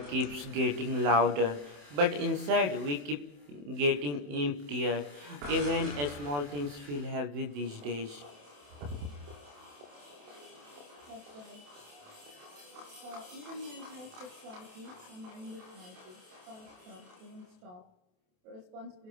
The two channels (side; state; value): left; late; 28 ms